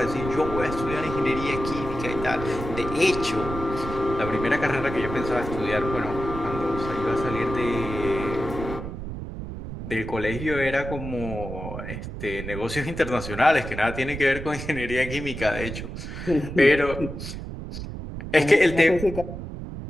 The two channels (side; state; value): right; noise; rumble, 8 dB below the sound